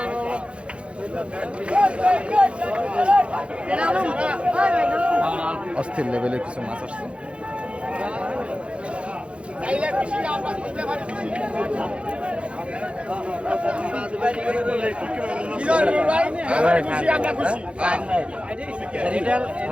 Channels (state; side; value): late; left; 0.059 ms